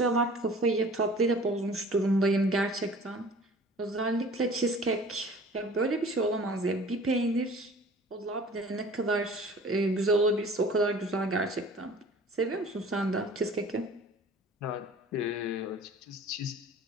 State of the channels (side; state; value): both; normal; correlation 0.46